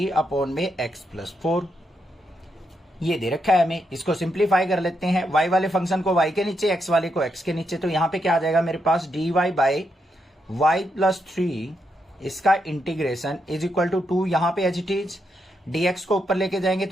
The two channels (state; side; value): normal; both; correlation 0.81